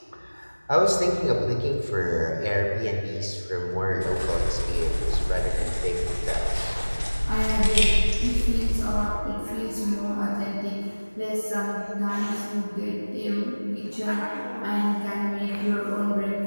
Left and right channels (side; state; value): both; inverted; correlation -1.00